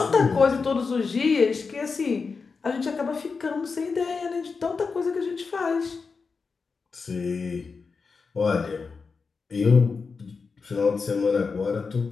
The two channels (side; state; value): right; quieter; 4.8 dB